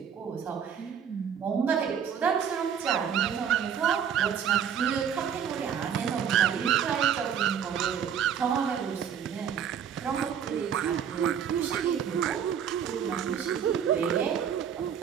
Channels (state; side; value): quieter; left; 8.3 dB